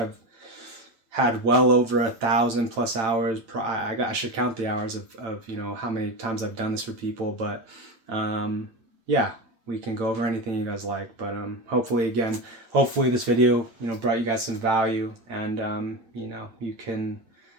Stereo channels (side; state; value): left; late; 8.9 ms